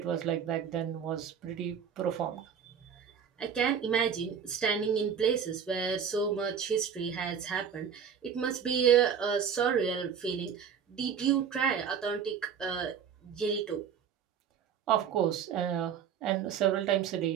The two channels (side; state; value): left; quieter; 7.5 dB